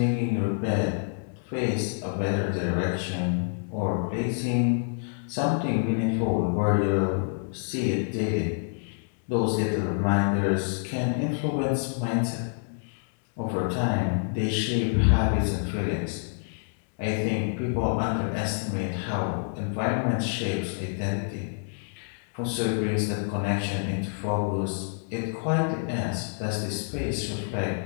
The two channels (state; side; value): silent; right; digital silence